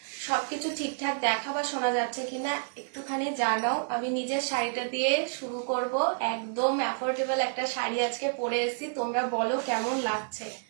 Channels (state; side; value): silent; left; digital silence